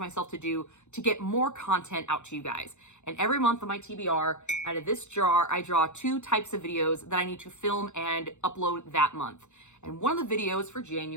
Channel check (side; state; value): right; late; 0.83 ms